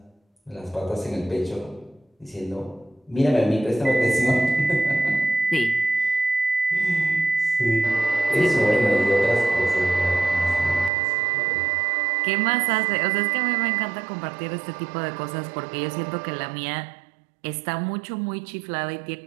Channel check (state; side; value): drops out; left; at 10.9 s